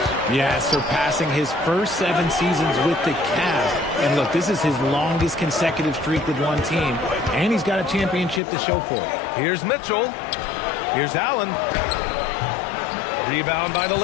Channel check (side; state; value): right; drops out; at 8.4 s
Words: Yeah, surpassing his first 7 seasons with the Cavs. And look, this is his longest consecutive streak with one team, and he's got a championship to show for it. Here's Mitchell. Here's Allen. Rebound by the